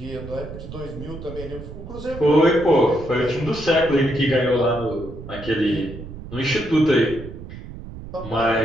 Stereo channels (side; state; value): right; noise; rumble, 12 dB below the sound